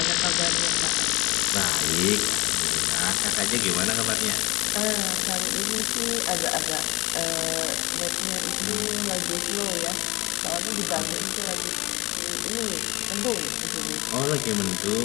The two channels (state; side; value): quieter; right; 21.8 dB